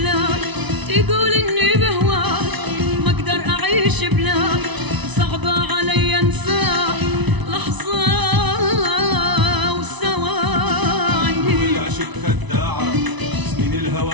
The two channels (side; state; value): left; late; 1.0 ms